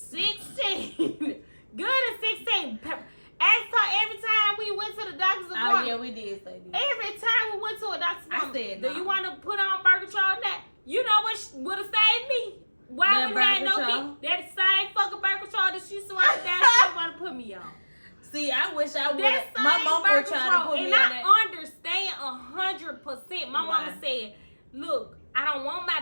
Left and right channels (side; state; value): both; inverted; correlation -1.00